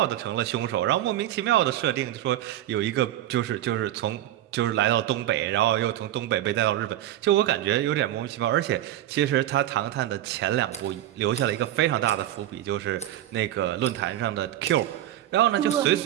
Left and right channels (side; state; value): left; quieter; 13.0 dB